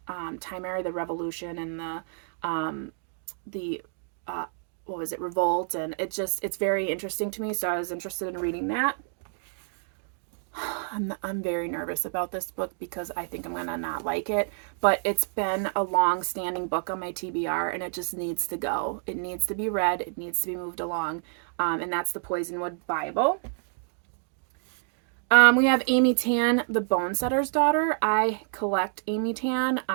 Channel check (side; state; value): left; silent; digital silence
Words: time era, the revolution and the what was it, revolt, and it's very interesting to me, so I was interested in reading that. I'm very nervous about this book because I think I'm gonna not like it, but it's been a long-standing book on my TBR and it just needs to go. It needs to be read, it needs to be moved along, and that's the Poisonwood Bible. We have Amy Tan, The Bone Setter's Daughter. I collect Amy Tan.